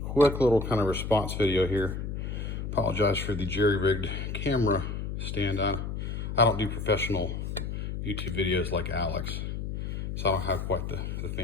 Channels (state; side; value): noise; left; hum, 4 dB below the sound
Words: quick little kind of response video here. Apologize for the jerry-rigged camera stand on. I don't do professional YouTube videos like Alex, so I don't have quite the